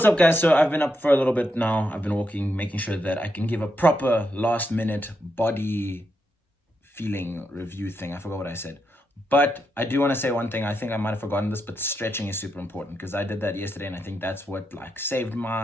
up guys? So I've been up for a little bit now. I've been walking, making sure that I can give a proper last minute body feeling review thing. I forgot what I said. But I do want to say one thing. I think I might have forgotten this, but stretching is super important, because I did that yesterday, and I think that's what like saved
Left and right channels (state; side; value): normal; both; correlation 0.83